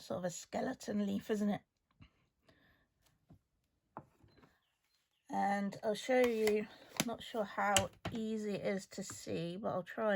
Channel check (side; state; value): both; identical; correlation 1.00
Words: sort of a skeleton leaf, isn't it? And I'll show you, not sure how easy it is to see, but I'll try